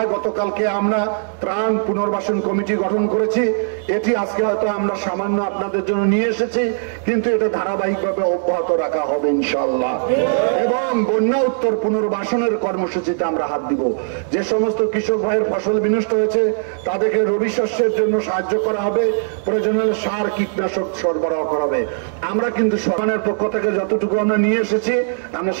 গতকালকে আমরা ত্রাণ পুনর্বাসন কমিটি গঠন করেছি। এটি আজকে হয়তো আমরা সামান্য আপনাদের জন্য নিয়ে এসেছি, কিন্তু এটা ধারাবাহিকভাবে অব্যাহত রাখা হবে ইনশাআল্লাহ। এবং বন্যা উত্তর পুনর্বাসনের কর্মসূচিতে আমরা হাত দিব। যে সমস্ত কৃষক ভাইয়ের ফসল বিনষ্ট হয়েছে তাদেরকে রবি শস্যের জন্য সাহায্য করা হবে, প্রয়োজনে সার কীটনাশক সরবরাহ করা হবে। আমরা কিন্তু সরকারের পক্ষ থেকে যতটুকু আমরা নিয়ে এসেছি আমরা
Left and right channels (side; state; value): left; silent; digital silence